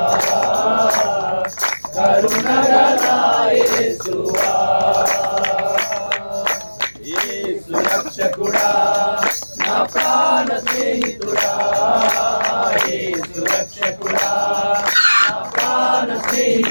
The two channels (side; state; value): both; inverted; correlation -1.00